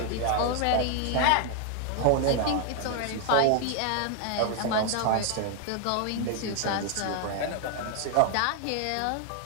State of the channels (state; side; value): different; both; correlation 0.00